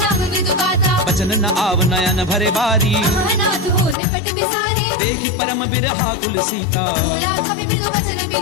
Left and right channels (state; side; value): drops out; right; at 4.0 s